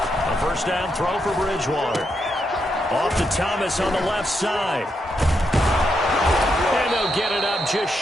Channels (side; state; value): both; normal; correlation 0.81